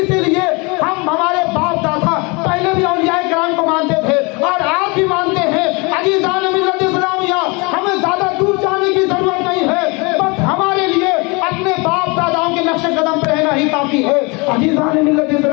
لیے ہم ہمارے باپ دادا پہلے بھی اولیاء کرام کو مانتے تھے اور آج بھی مانتے ہیں. عزیزان ملت اسلامیہ ہمیں زیادہ دور جانے کی ضرورت نہیں ہے, بس ہمارے لیے اپنے باپ داداؤں کے نقش قدم پہ رہنا ہی کافی ہے. عزیزان ملت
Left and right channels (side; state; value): right; quieter; 28.5 dB